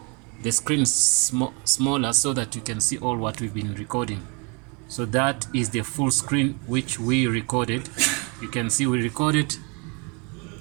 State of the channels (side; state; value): left; quieter; 32.9 dB